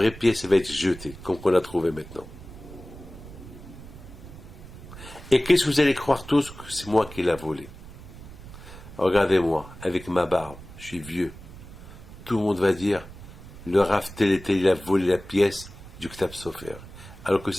pièce va être jetée, comme on l'a trouvée maintenant. Et qu'est-ce que vous allez croire tous que c'est moi qui l'ai volé? Regardez-moi, avec ma barbe, je suis vieux. Tout le monde va dire, le Rav tel et tel, il a volé la pièce du Ktab Sofer. Alors que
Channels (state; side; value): noise; right; rumble, 16 dB below the sound